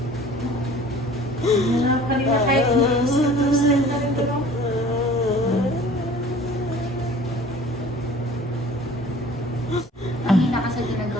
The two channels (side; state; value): both; normal; correlation 0.47